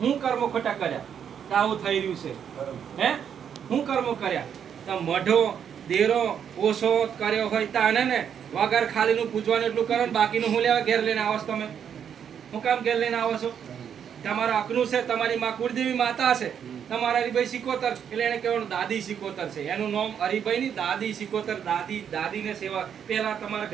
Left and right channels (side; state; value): left; quieter; 8.3 dB